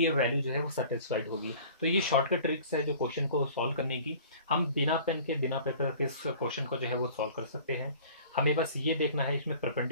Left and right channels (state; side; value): inverted; both; correlation -0.46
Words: ये वैल्यू जो है वो सेटिस्फाइड होगी। तो ये शॉर्टकट ट्रिक्स है जो क्वेश्चन को सॉल्व करने की। हम बिना पेन के बिना पेपर के इस क्वेश्चन को जो है वो सॉल्व कर सकते हैं। हमें बस ये देखना है इसमें